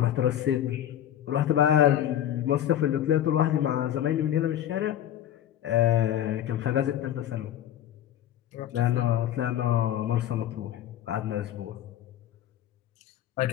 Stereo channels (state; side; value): quieter; right; 11.3 dB